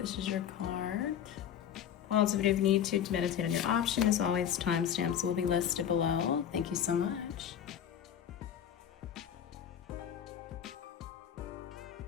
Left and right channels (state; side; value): quieter; right; 9.4 dB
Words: is your card. Pause if you need to meditate on your option. As always, timestamps will be listed below. Thank you so much.